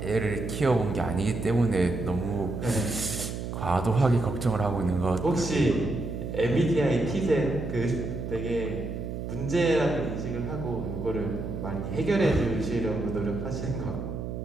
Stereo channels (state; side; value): noise; right; hum, 5 dB below the sound